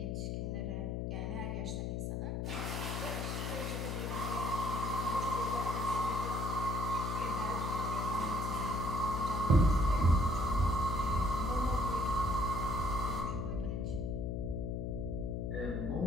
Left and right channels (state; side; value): noise; left; hum, 1 dB below the sound